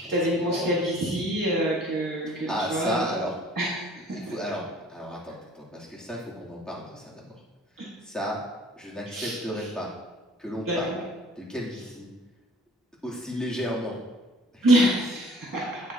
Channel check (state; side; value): normal; both; correlation 0.51